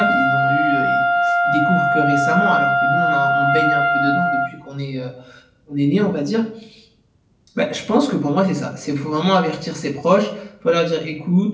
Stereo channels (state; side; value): identical; both; correlation 1.00